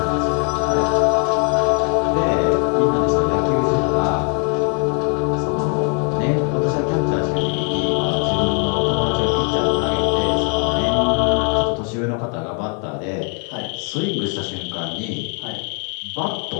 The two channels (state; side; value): quieter; right; 39.3 dB